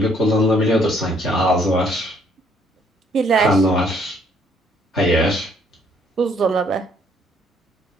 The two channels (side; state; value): both; normal; correlation 0.65